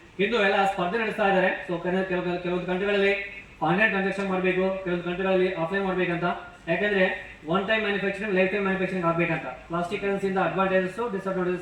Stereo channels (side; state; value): both; identical; correlation 1.00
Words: ಇಂದು ಎಲ್ಲ ಸ್ಪರ್ಧೆ ನಡೆಸ್ತಾ ಇದ್ದಾರೆ. ಸೊ ಕೆಲವೊಂದು ಕಂಟ್ರಿಗಳಲ್ಲಿ ಆನ್ಲೈನ್ ಟ್ರಾನ್ಸಾಕ್ಷನ್ ಮಾಡಬೇಕು, ಕೆಲವೊಂದು ಕಂಟ್ರಿಗಳಲ್ಲಿ ಆಫ್ಲೈನ್ ಮಾಡಬೇಕಂತ. ಯಾಕಂದ್ರೆ one time manufacturing, life time manufacturing ಆಗಬೇಕಂತ. ಪ್ಲಾಸ್ಟಿಕ್ ಕರೆನ್ಸಿಯಿಂದ ಅಡ್ವಾಂಟೇಜಸ್,